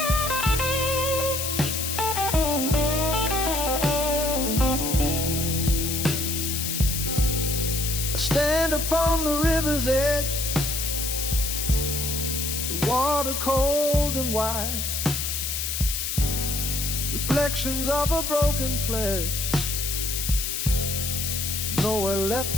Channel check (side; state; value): left; noise; hiss, 2 dB below the sound